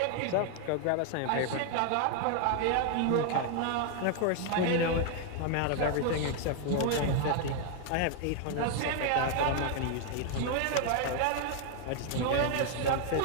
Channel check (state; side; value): different; both; correlation 0.00